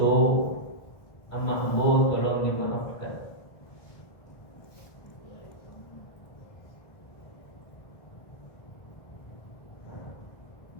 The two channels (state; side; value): late; right; 1.6 ms